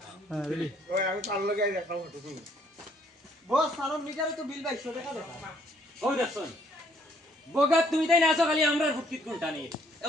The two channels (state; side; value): normal; both; correlation 0.65